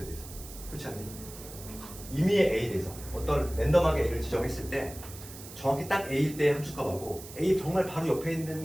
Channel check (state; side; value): noise; right; hiss, 15 dB below the sound